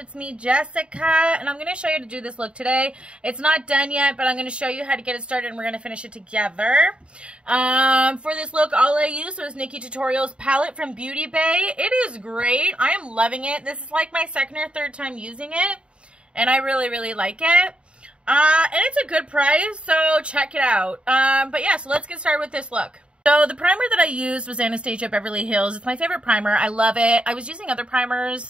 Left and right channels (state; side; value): late; left; 0.056 ms